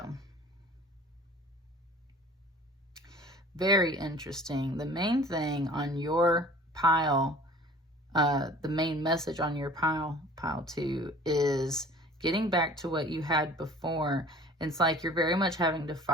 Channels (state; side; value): normal; both; correlation 0.46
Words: very interesting. The main thing on your pile, the main message on your pile 2, is getting back to what you had before. It's like you're very much having to